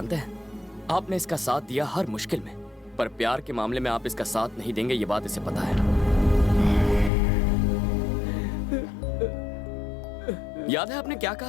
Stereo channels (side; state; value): right; drops out; at 7.1 s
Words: हैं? आपने इसका साथ दिया हर मुश्किल में, पर प्यार के मामले में आप इसका साथ नहीं देंगे, ये बात इसे पता है। याद है आपने क्या